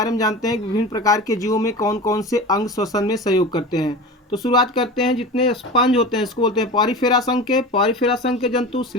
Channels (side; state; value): both; normal; correlation 0.31